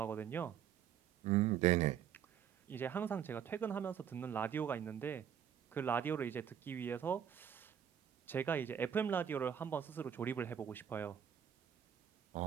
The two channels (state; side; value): quieter; left; 8.9 dB